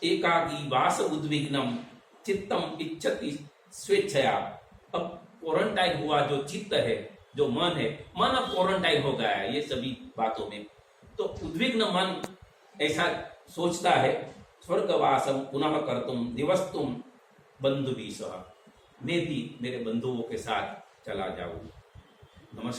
एकाकी वास उद्विग्नम चित्तम इच्छति स्वेच्छया। अब क्वारंटाइन हुआ जो चित्त है, जो मन है, मन अब क्वारंटाइन हो गया है ये सभी बातों में, तो उद्विग्न मन ऐसा सोचता है स्वर्गवासम पुनः कर्तुम दिवस्तुम बंधुभिः सह। मैं भी मेरे बंधुओं के साथ चला जाऊं।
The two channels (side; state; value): both; identical; correlation 1.00